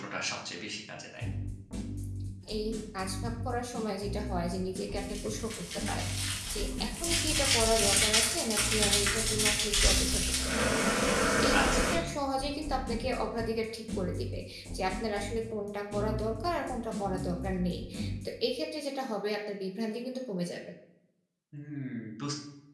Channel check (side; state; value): both; identical; correlation 1.00